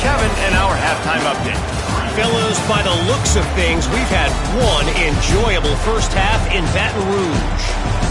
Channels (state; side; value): identical; both; correlation 1.00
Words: in our halftime update. Fellas, by the looks of things, we've had one enjoyable first half in Baton Rouge.